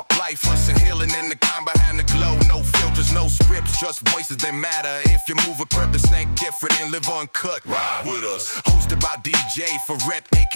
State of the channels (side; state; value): both; inverted; correlation -1.00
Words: life, hustle, healing in the kind behind the glow. No filters, no scripts, just voices that matter. If you move a purpose, ain't different and live uncut, ride with us. Hosted by DJ Verrett,